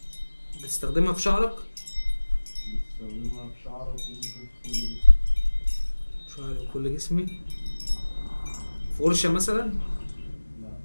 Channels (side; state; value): both; inverted; correlation -1.00